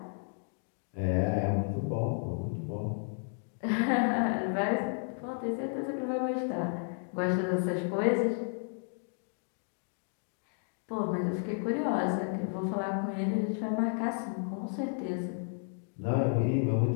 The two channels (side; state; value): right; silent; 56 dB below the other